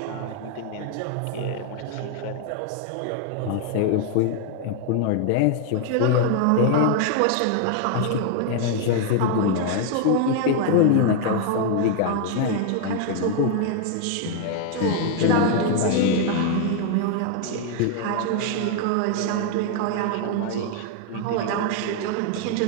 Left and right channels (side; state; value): both; different; correlation 0.00